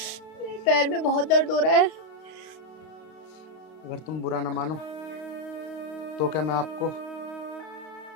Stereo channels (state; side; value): late; right; 32 ms